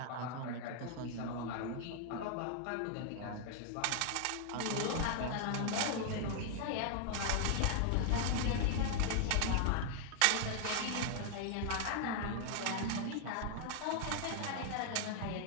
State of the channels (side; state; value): both; different; correlation 0.00